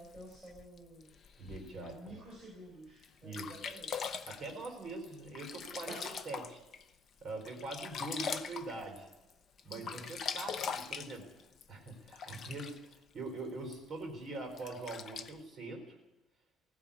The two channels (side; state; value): both; normal; correlation 0.61